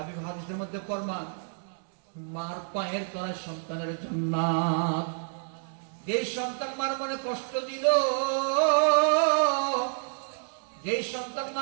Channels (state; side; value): silent; left; 59 dB below the other